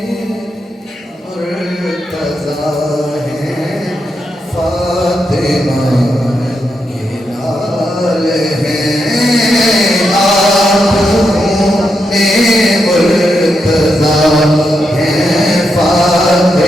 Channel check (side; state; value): both; normal; correlation 0.84